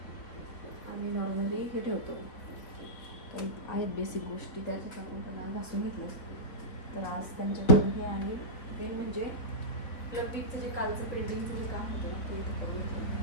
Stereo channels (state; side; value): late; right; 3.7 ms